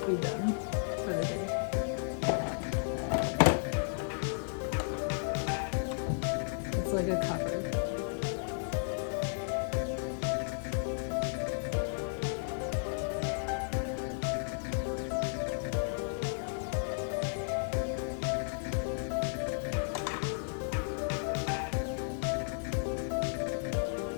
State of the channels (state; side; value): silent; right; 55 dB below the other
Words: be done for the day. It's like a cover.